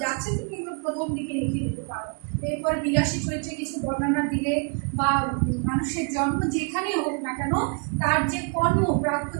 যাচ্ছে, তুমি এগুলো প্রথম দিকে লিখে দিতে পারো। এরপরে বিলাসী চরিত্রে কিছু বর্ণনা দিলে বা মানুষের জন্ম যেখানে হোক না কেন তার যে কর্ম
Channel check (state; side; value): quieter; left; 36.0 dB